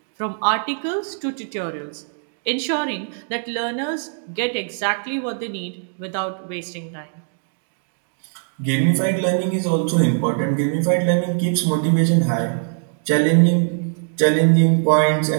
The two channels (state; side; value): silent; left; 60 dB below the other